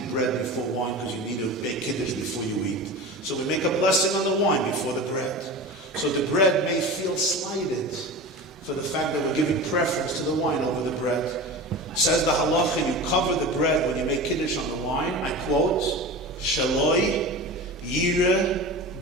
bread before wine because you need to make Kiddush before you eat. So we make a blessing on the wine before the bread. So the bread may feel slighted for the fact that we're giving preference to the wine over the bread. Says the halacha, you cover the bread when you make kiddush on the wine. I quote, Shaloi yire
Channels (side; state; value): both; normal; correlation 0.31